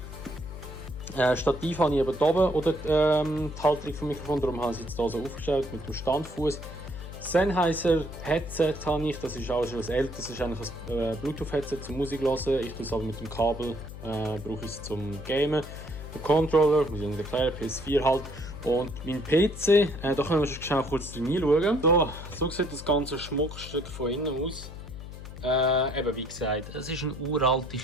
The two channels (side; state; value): left; noise; hum, 12 dB below the sound